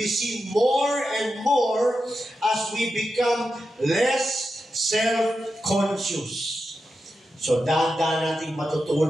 seen more and more as we become less self-conscious. So, dahan-dahan natin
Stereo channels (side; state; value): both; normal; correlation 0.89